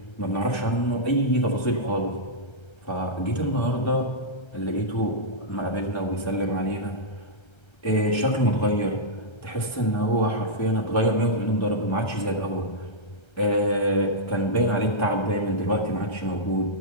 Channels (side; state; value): right; late; 1.3 ms